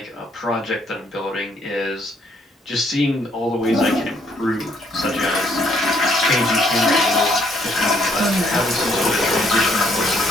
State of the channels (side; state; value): both; normal; correlation 0.68